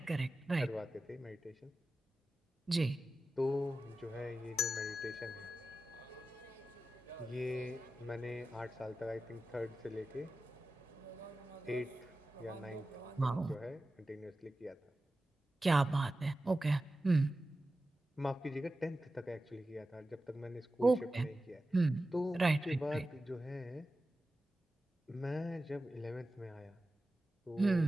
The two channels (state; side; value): normal; both; correlation 0.94